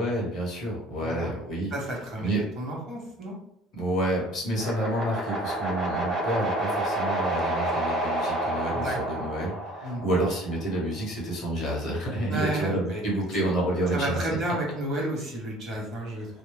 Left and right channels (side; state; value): both; normal; correlation 0.51